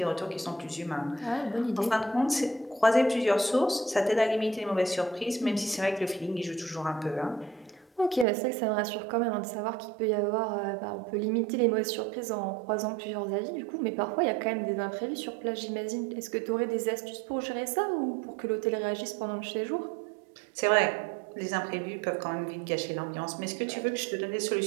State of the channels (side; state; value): left; drops out; at 8.2 s